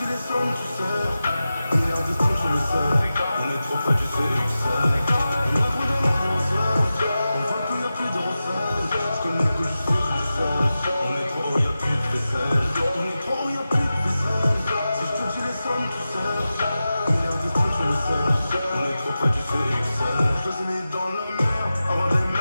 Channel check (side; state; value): both; inverted; correlation -0.93